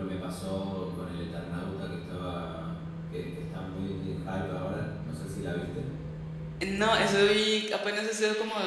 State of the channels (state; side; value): identical; both; correlation 1.00